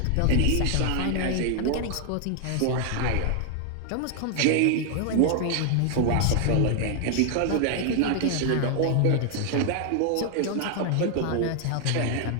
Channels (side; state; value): both; different; correlation 0.00